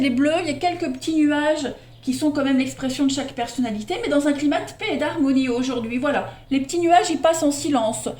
est bleu, il y a quelques petits nuages qui sont quand même l'expression de chaque personnalité, mais dans un climat de paix et d'harmonie aujourd'hui. Voilà, les petits nuages, ils passent en silence.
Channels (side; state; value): both; identical; correlation 1.00